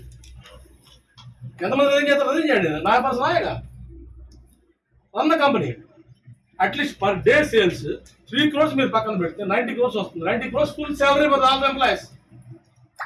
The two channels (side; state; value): both; identical; correlation 1.00